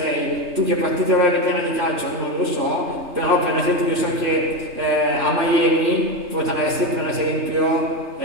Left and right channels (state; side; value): late; left; 3.3 ms